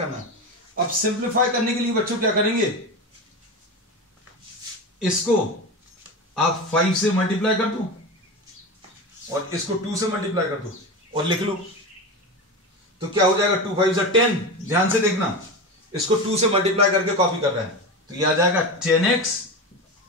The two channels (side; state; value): both; normal; correlation 0.23